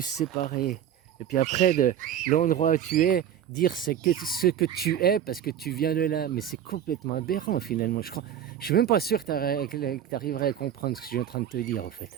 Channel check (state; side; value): quieter; left; 9.8 dB